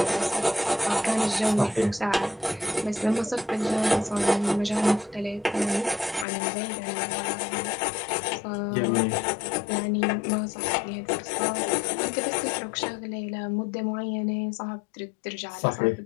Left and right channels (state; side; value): drops out; right; at 6.2 s